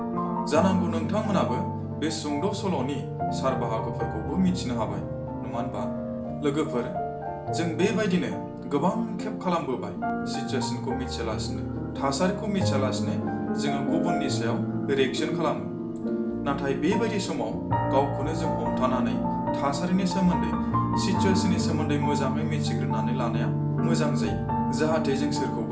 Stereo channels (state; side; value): identical; both; correlation 1.00